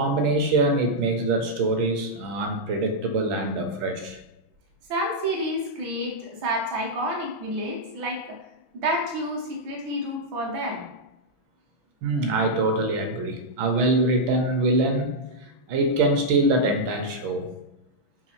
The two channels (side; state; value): left; late; 6.1 ms